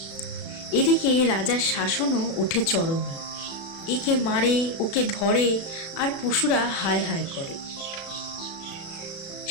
এদিকে রাজার শাসনও ওঠে চরমে। একে মারে, ওকে ধরে, আর পশুরা হায় হায় করে।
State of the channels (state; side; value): late; right; 36 ms